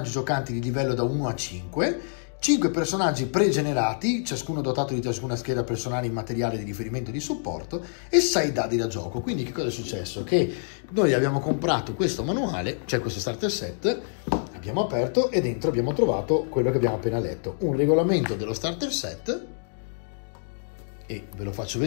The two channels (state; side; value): silent; right; digital silence